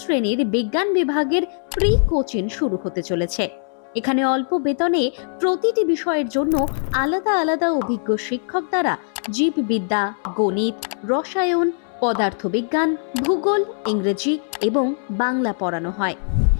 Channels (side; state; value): right; silent; 65 dB below the other